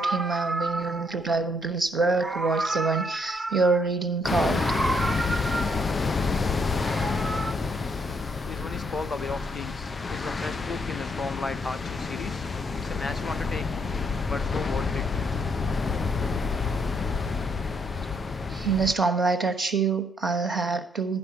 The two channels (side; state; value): both; normal; correlation 0.72